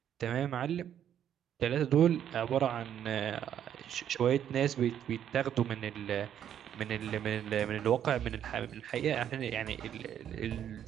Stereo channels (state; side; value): quieter; left; 9.8 dB